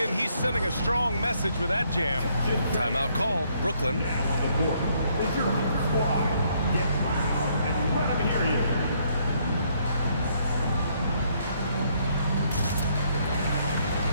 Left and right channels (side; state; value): both; inverted; correlation -0.70